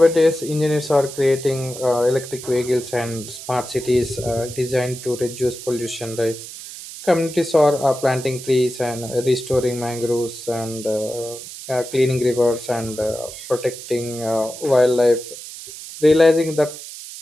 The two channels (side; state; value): right; noise; hiss, 12 dB below the sound